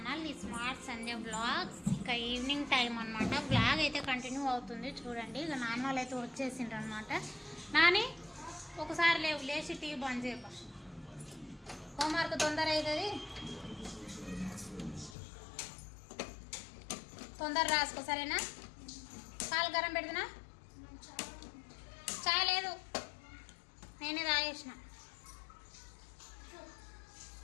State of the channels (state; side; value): drops out; right; at 15.2 s